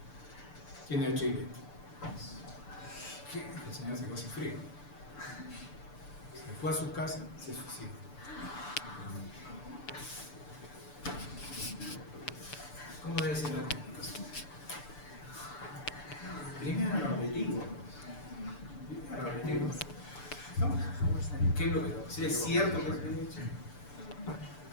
Tiene HIV. ¿Qué? El señor se quedó sin frío. Se fue a su casa, se suicidó. ¿Cómo debe ser la comunicación? Primero lo averiguo. ¿No? ¿Qué es lo que si es cierto que es hecho?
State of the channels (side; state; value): right; late; 6.8 ms